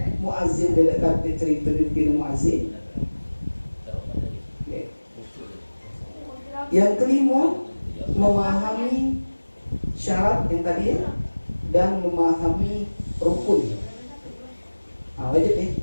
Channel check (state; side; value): inverted; both; correlation -1.00